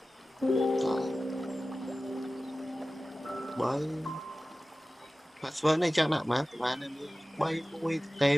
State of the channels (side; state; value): both; normal; correlation 0.96